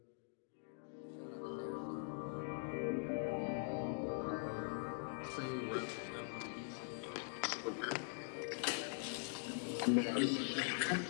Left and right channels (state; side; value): silent; right; digital silence